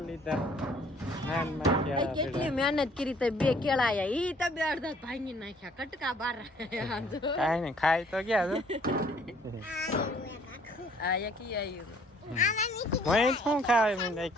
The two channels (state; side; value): normal; both; correlation 0.60